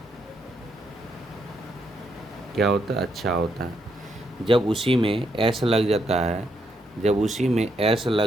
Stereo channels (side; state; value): both; normal; correlation 0.77